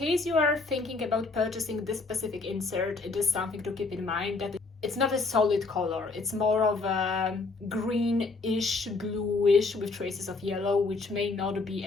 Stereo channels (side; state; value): right; quieter; 3.8 dB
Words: you are thinking about purchasing this specific insert, it is something to keep in mind that it's not a solid color. It's more of a greenish, bluish with traces of yellow, which may not be